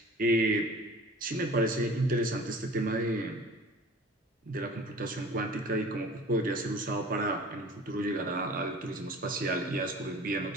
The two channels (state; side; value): normal; both; correlation 0.43